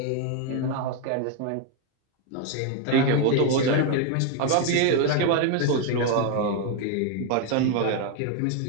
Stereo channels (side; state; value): both; different; correlation 0.01